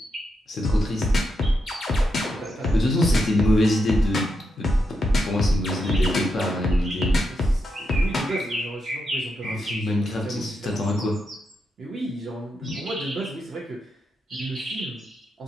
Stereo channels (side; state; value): both; normal; correlation 0.84